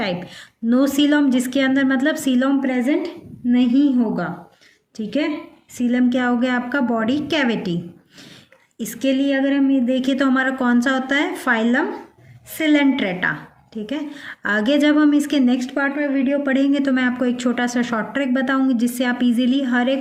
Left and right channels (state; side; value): identical; both; correlation 1.00